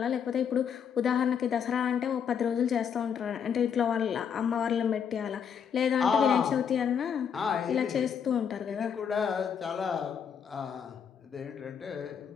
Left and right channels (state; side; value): quieter; right; 7.5 dB